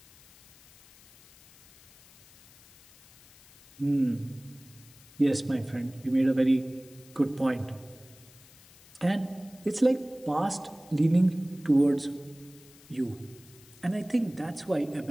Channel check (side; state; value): left; noise; hiss, 24 dB below the sound